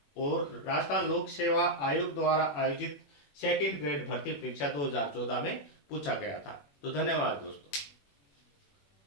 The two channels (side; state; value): right; late; 21 ms